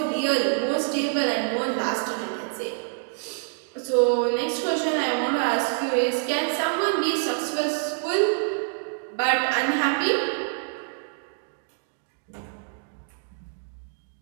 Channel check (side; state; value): left; silent; 58 dB below the other